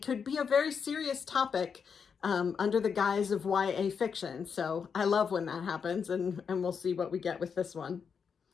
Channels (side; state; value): right; quieter; 6.4 dB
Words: could be a very serious topic under the guise of YA fiction. So I love when that happens, and we'll see what we get with this one.